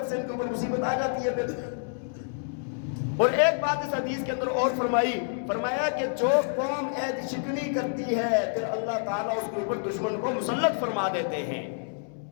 سے ان کے اوپر مصیبت آ جاتی ہے پھر. اور ایک بات اس حدیث کے اندر اور فرمایا کہ جو قوم عہد شکنی کرتی ہے پھر اللہ تعالیٰ اس کے اوپر دشمن کو مسلط فرما دیتے ہیں.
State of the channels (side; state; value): right; silent; 59 dB below the other